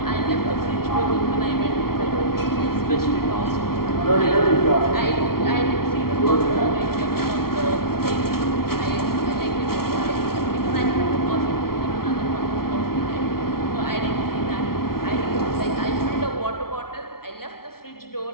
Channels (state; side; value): late; right; 0.94 ms